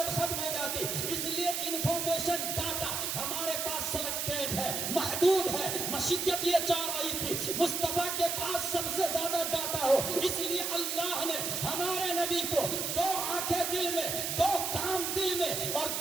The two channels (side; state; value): right; noise; hiss, 1 dB below the sound